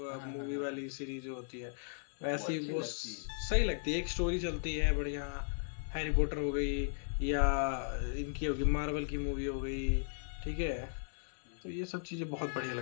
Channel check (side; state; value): right; silent; digital silence